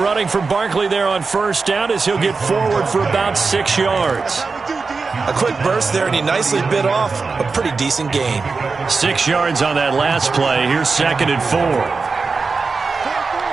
from Barkley there on first down as he'll get forward for about 6 yards. A quick burst there, and he nicely bit off a pretty decent gain. 6 yards on that last play. Here's 2nd and 4.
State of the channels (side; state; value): left; quieter; 4.4 dB